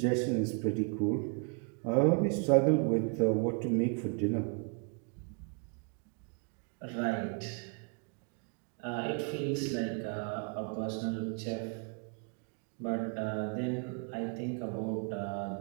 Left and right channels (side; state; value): left; quieter; 39.3 dB